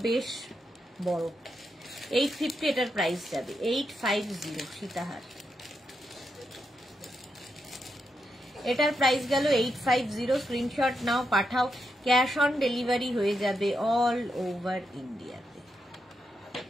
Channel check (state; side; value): normal; both; correlation 0.83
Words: বেশ বড়। 850 এটার প্রাইস যাবে 850 সীতাহার। এটার প্রাইস গেল 850। স্ক্রিনশট নাও, পাঠাও, ক্যাশ অন ডেলিভারি হয়ে যাবে অল ওভার ইন্ডিয়াতে।